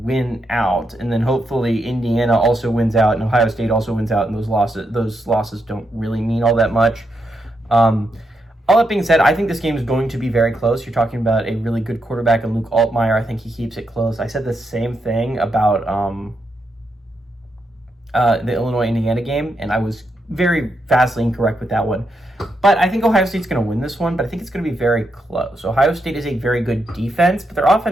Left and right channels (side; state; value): both; normal; correlation 0.82